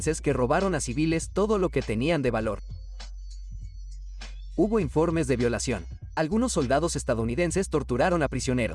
que robaron a civiles todo lo que tenían de valor. Hubo informes de violación. Algunos soldados estadounidenses torturaron a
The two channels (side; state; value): both; identical; correlation 1.00